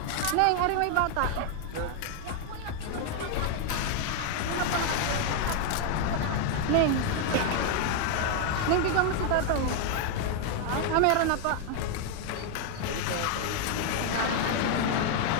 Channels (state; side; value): different; both; correlation 0.00